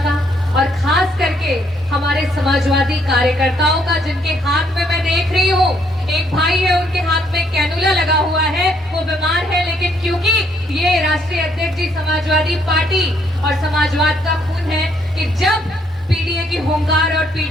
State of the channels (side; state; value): both; normal; correlation 0.70